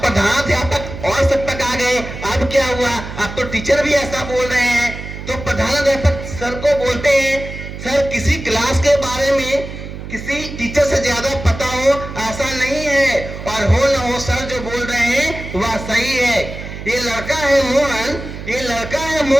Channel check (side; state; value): right; noise; hum, 10 dB below the sound